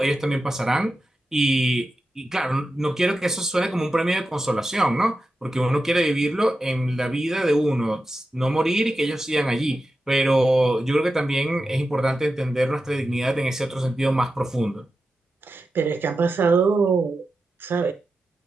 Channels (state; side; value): normal; both; correlation 0.91